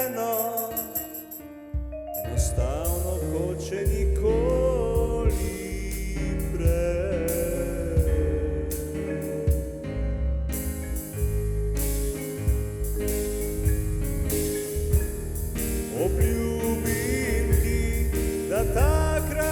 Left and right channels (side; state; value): both; identical; correlation 1.00